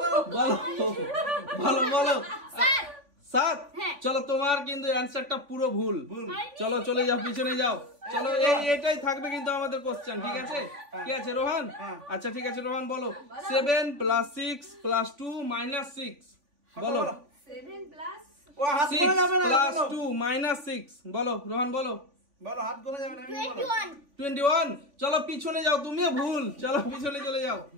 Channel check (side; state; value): left; late; 3.4 ms